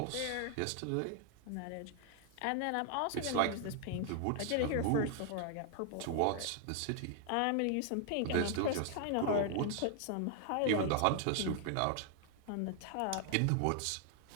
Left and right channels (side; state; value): both; different; correlation 0.00